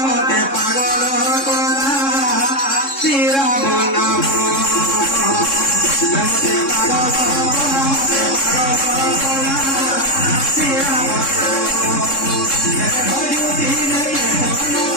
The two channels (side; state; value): right; late; 3.7 ms